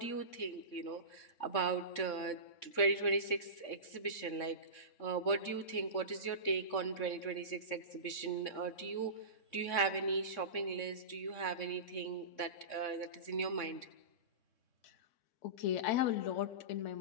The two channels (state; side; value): late; right; 3.6 ms